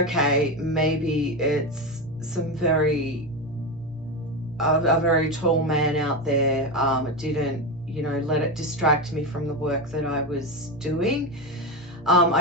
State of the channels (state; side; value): normal; both; correlation 0.16